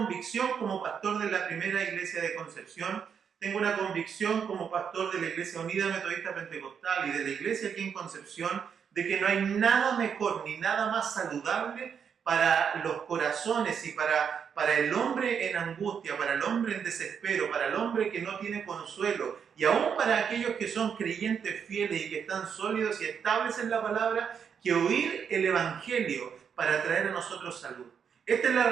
como pastor de la primera iglesia de Concepción, tengo una convicción como pastor de la Iglesia Unida Metodista Pentecostal y de la iglesia aquí en Concepción, de que no hay nada mejor ni nada más saludable para los corazones y para el hombre en angustia, para el hombre en desespero, para el hombre que no tiene consuelo y aún para aquellos que son creyentes fieles y que están sólidos y estables en la palabra, que oír el Evangelio para traer a nosotros salud. Esta es la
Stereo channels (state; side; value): quieter; left; 7.2 dB